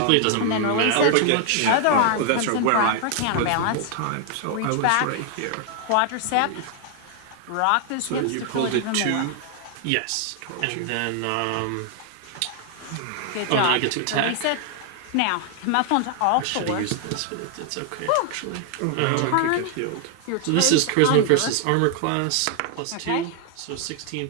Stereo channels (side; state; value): both; different; correlation 0.00